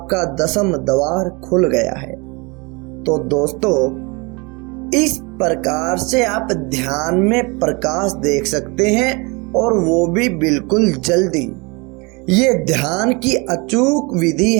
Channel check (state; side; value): quieter; left; 28.2 dB